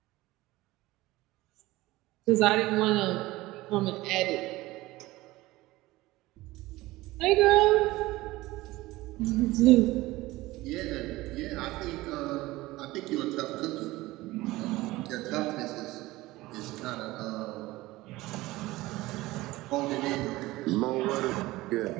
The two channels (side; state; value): left; quieter; 18.8 dB